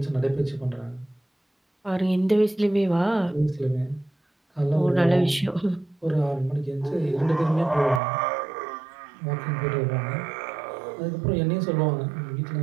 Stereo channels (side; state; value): left; drops out; at 8.0 s